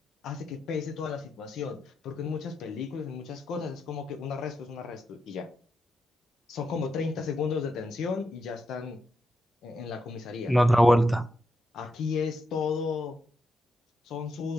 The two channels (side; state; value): both; normal; correlation 0.84